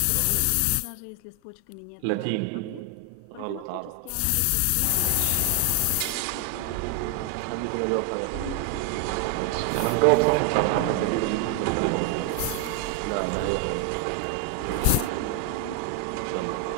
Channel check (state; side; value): different; both; correlation 0.00